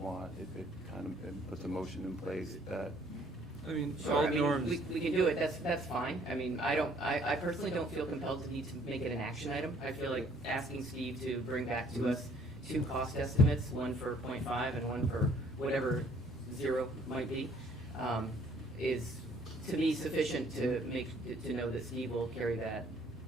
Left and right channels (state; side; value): normal; both; correlation 0.60